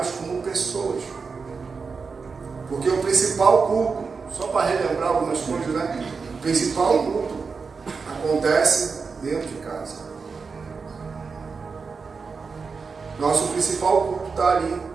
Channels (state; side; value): quieter; left; 5.0 dB